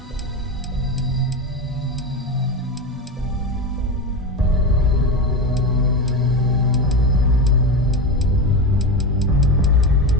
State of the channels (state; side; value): normal; both; correlation 0.19